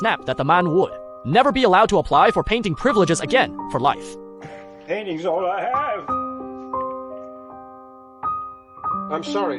that the man would never be allowed to apply for painting privileges again for life. Painting's all I have. I'm sorry,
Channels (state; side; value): identical; both; correlation 1.00